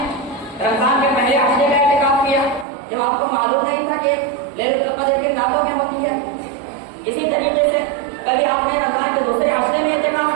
پہلے ہفتے کا اعتکاف کیا، جب آپ کو معلوم نہیں تھا کہ لیلۃ القدر کی راتوں میں ہوتی ہے۔ اسی طریقے سے کبھی آپ نے رمضان کے دوسرے ہفتے میں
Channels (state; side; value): drops out; left; at 2.7 s